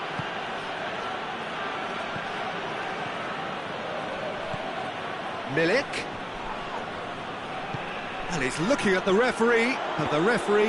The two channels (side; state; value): both; identical; correlation 1.00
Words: Milik. And he's looking at the referee, and the